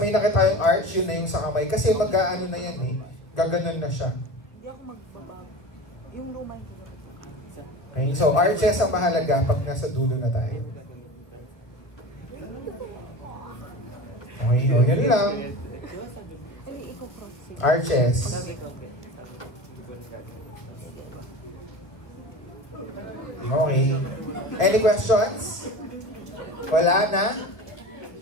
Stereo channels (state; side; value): late; right; 1.5 ms